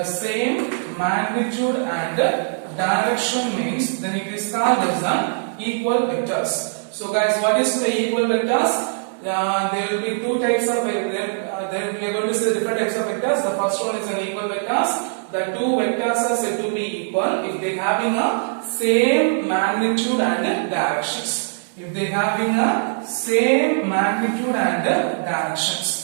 same magnitude and direction means then it is called as an equal vectors. So guys, what is the equal vectors? There will be two types of we are going to see different types of vectors. The first one is an equal vectors. The two vectors are said to be equal if they having a same magnitude and directions. If they having a same magnitude and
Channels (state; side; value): silent; left; digital silence